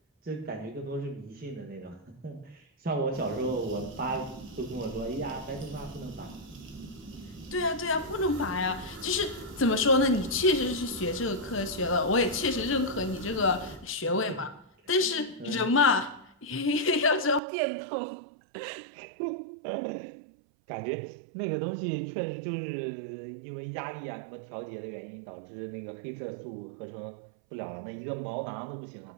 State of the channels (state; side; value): drops out; left; at 17.4 s